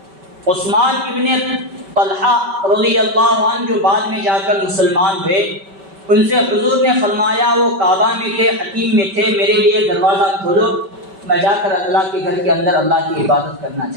عثمان ابن طلحہ رضی اللہ عنہ جو بعد میں جا کر مسلمان ہوئے، ان سے حضور نے فرمایا، وہ کعبہ میں تھے، حتیم میں تھے، میرے لیے دروازہ کھولو، میں جا کر اللہ کے گھر کے اندر اللہ کی عبادت کرنا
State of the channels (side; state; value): left; late; 5.2 ms